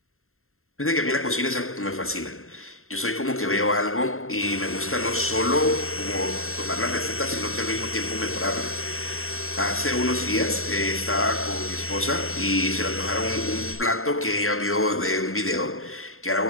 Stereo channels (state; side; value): late; right; 0.62 ms